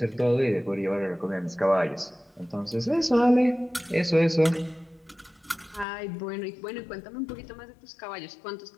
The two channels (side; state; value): right; drops out; at 5.9 s